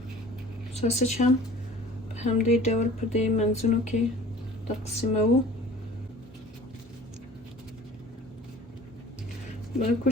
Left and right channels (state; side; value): normal; both; correlation 0.46